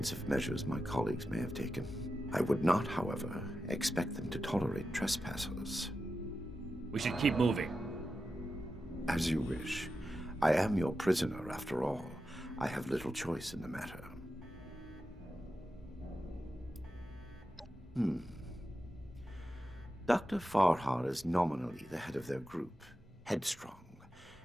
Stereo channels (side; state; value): both; normal; correlation 0.90